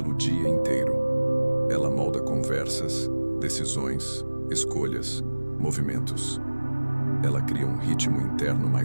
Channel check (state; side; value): inverted; both; correlation -1.00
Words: dia inteiro. Ela molda conversas, decisões, escolhas, movimentos. Ela cria um ritmo interno